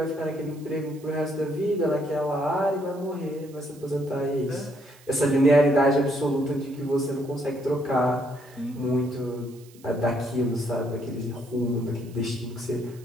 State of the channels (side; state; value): right; noise; hiss, 25 dB below the sound